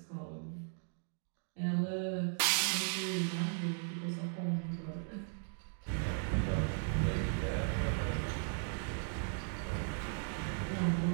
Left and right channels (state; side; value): silent; left; 53 dB below the other